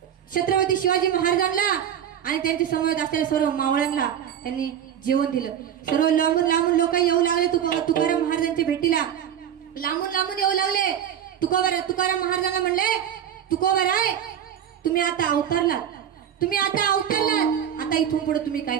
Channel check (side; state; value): left; quieter; 9.5 dB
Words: छत्रपती शिवाजी महाराजांना आणि त्यांच्या समोर असलेल्या सर्व मावळ्यांना त्यांनी जेवण दिलं. सर्व लांबून लोक येऊ लागले तुकाराम महाराजांच्या भेटीला. लांबून येऊ लागले. तुकाराम महाराजांना म्हणले तुकोबराय तुम्ही आता अवतरलात, आता इथून पुढे तुम्ही काय